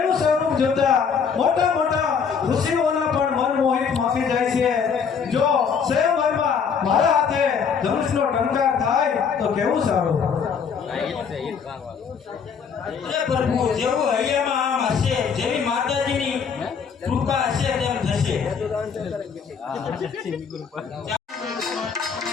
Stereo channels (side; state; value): right; quieter; 6.4 dB